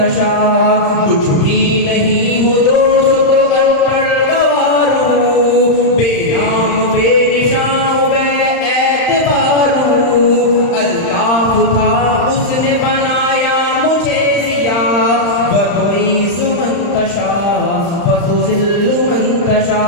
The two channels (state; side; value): late; right; 35 ms